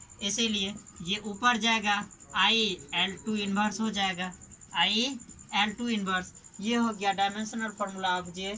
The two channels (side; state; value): both; identical; correlation 1.00